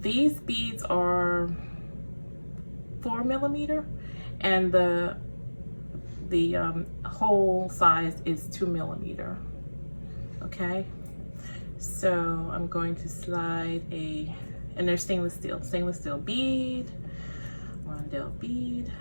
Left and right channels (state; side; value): inverted; both; correlation -1.00